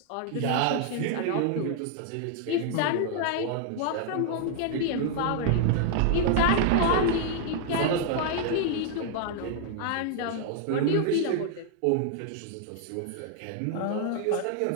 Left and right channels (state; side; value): different; both; correlation 0.00